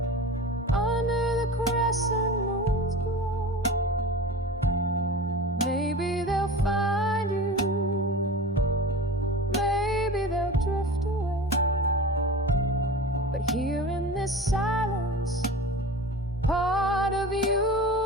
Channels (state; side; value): normal; both; correlation 0.33